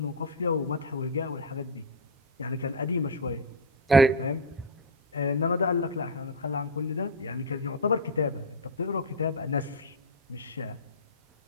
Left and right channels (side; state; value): both; normal; correlation 0.00